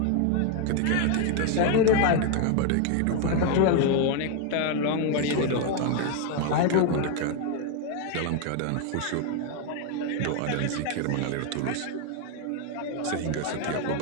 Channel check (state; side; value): different; both; correlation 0.01